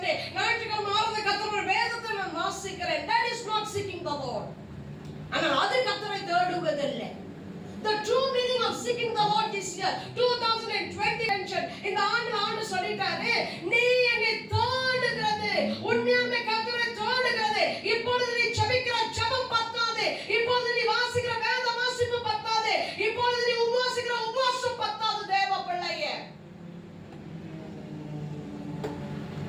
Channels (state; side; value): identical; both; correlation 1.00